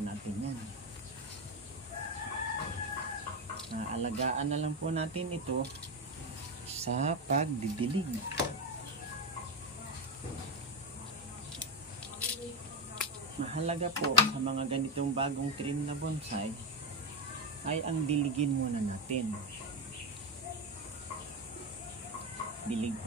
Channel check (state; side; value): normal; both; correlation 0.11